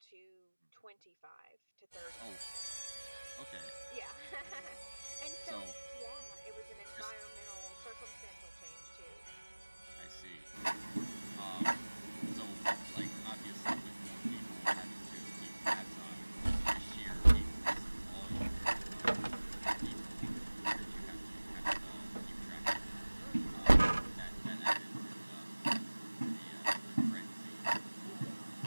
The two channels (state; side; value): inverted; both; correlation -1.00